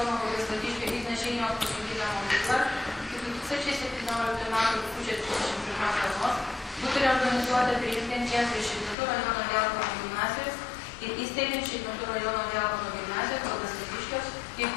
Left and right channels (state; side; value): drops out; right; at 9.0 s